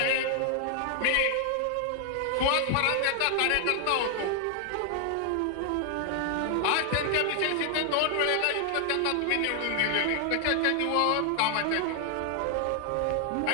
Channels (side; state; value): both; different; correlation 0.00